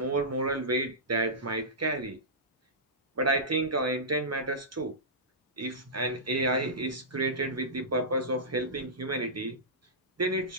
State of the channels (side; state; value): both; normal; correlation -0.16